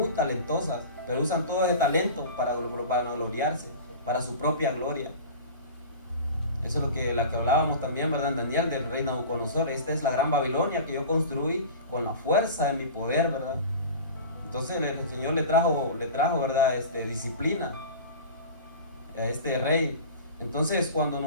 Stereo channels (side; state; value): both; inverted; correlation -0.35